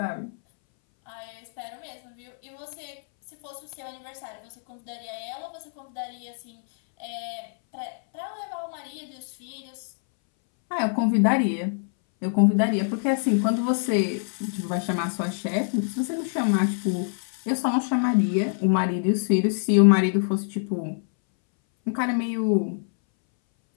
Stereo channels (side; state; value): right; silent; 60 dB below the other